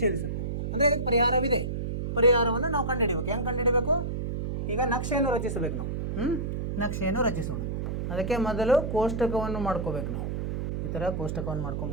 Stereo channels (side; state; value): right; noise; hum, 3 dB below the sound